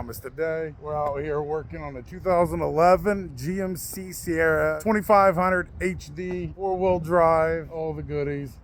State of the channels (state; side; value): identical; both; correlation 1.00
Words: Today we're out here working on the 2011 GMC Sierra 2500 HD, 4-wheel drive, all the goodies.